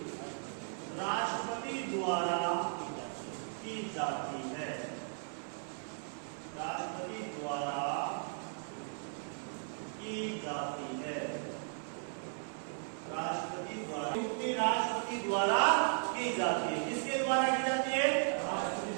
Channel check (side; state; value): left; silent; 54 dB below the other